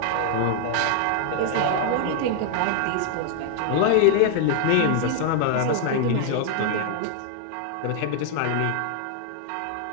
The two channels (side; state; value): both; different; correlation 0.00